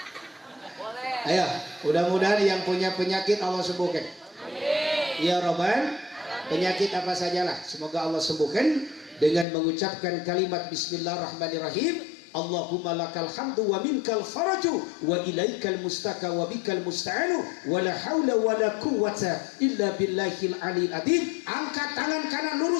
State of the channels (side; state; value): right; drops out; at 9.5 s